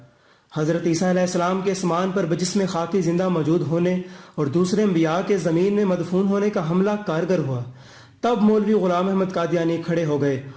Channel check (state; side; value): identical; both; correlation 1.00